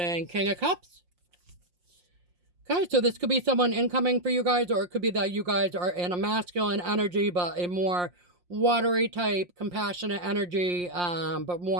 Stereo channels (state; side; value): late; left; 5.7 ms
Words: King of Cups. Okay, so this could be someone incoming for you guys, or it could be that you guys are in a masculine energy, but a more watery type, compassionate energy, but